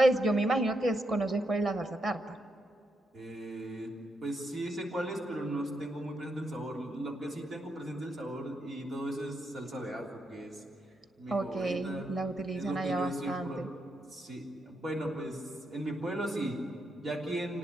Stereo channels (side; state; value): both; normal; correlation 0.81